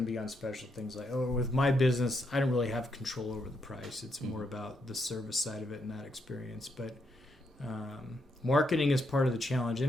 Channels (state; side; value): normal; both; correlation 0.78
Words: to be on special, things like, with my business, I don't really have control over the price. It's more about the service side of it and that experience. But marketing is part of the challenge,